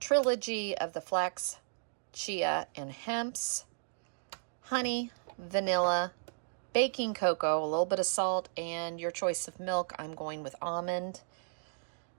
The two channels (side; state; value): left; silent; digital silence